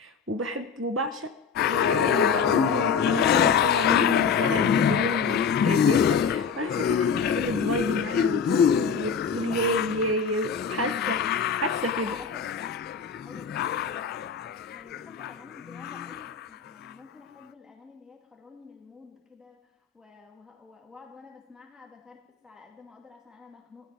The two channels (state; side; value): quieter; right; 5.9 dB